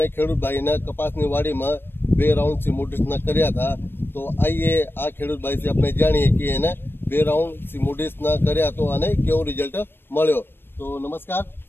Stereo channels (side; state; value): right; late; 0.10 ms